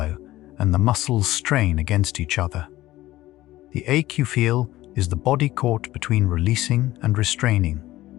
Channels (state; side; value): quieter; right; 16.2 dB